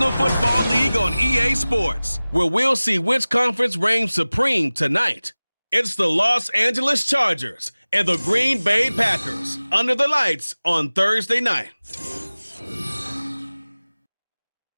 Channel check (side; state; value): both; inverted; correlation -0.98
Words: Football League on EA Sports, where we'll see which conference reigns supreme tonight. It's the Los Angeles Chargers and the Green Bay Packers under the lights on Thursday night.